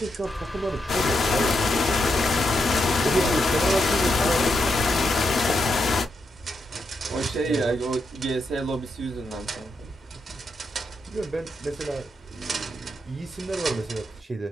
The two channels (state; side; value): normal; both; correlation 0.83